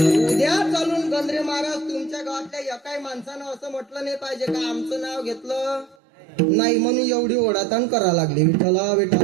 उद्या चालून गंद्रे महाराज तुमच्या गावातल्या एकाही माणसानं असं म्हटलं नाही पाहिजे का आमचं नाव घेतलं नाही म्हणून एवढी ओढाताण करा लागली. विठ्ठला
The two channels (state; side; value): drops out; left; at 6.0 s